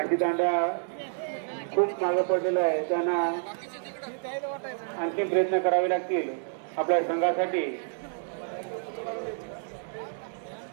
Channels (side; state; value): left; silent; digital silence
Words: खूप मागे पडलेला आहे. त्यांना आणखी प्रयत्न करावे लागतील आपल्या संघासाठी.